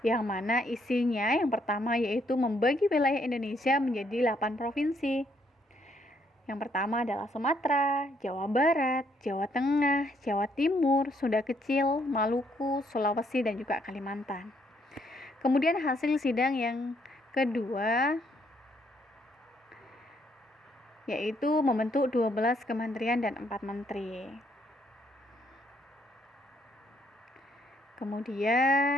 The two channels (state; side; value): normal; both; correlation 0.70